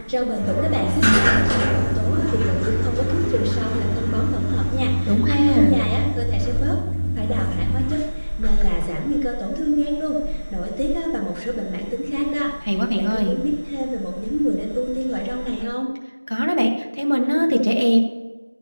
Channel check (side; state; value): both; inverted; correlation -1.00